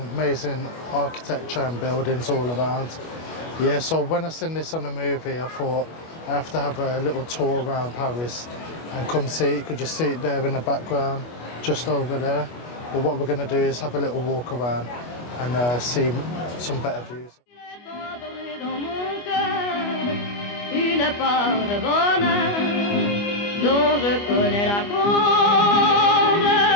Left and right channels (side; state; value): right; late; 25 ms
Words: architecture and buildings all around. Yeah, so when I seen this on the movie, I thought I have to have a little tour around Paris and come see it. You could just see it there in the background, just over there. But what we're going to do is have a little walk around and see some better views. Une part de bonheur dont je connais la cause.